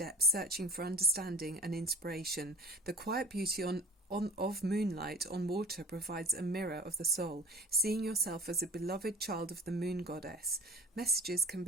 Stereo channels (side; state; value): both; normal; correlation 0.41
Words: searching for understanding and inspiration. The quiet beauty of moonlight on water provides a mirror of the soul, seeing yourself as a beloved child of the moon goddess. Messages can